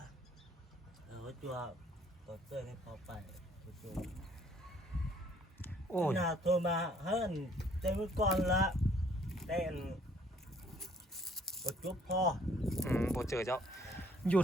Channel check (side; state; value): both; normal; correlation 0.61